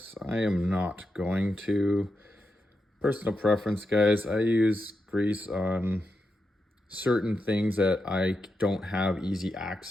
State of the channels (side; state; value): both; normal; correlation 0.86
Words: I am not going to. Personal preference, guys. I use grease on certain things that I don't have easy